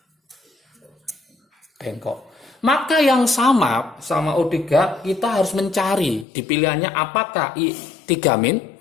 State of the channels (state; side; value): drops out; right; at 6.2 s